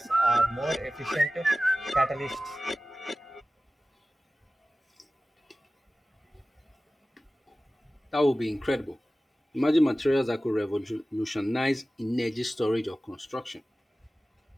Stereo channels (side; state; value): both; normal; correlation 0.97